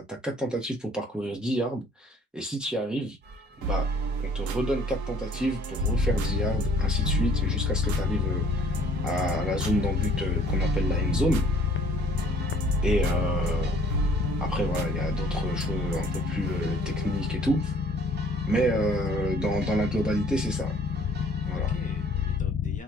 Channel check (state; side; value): normal; both; correlation 0.57